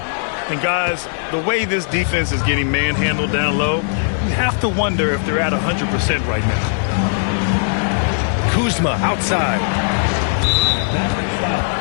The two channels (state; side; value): silent; right; digital silence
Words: And guys, the way this defense is getting manhandled down low, you have to wonder if they're at 100% right now. Kuzma outside.